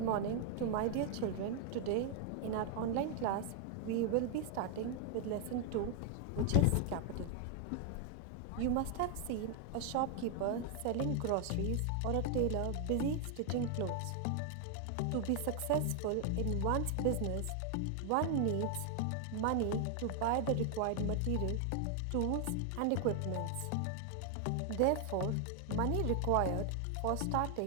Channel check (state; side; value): different; both; correlation 0.00